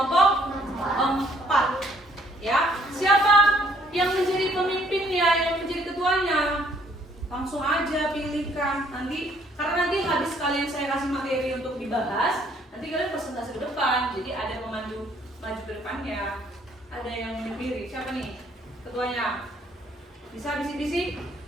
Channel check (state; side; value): normal; both; correlation 0.64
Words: 4. Ya, siapa yang menjadi pemimpinnya, yang menjadi ketuanya? Langsung aja pilihkan nanti, karena nanti habis kalian saya kasih materi untuk dibahas, nanti kalian presentasi ke depan. Jadi ada maju ke depannya, ada yang berdiri. Siapa nih ketuanya? Bisa bisik-bisik?